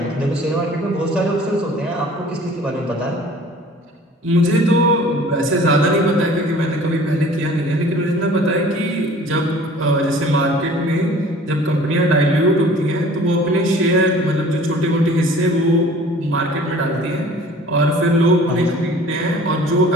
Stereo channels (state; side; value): normal; both; correlation 0.48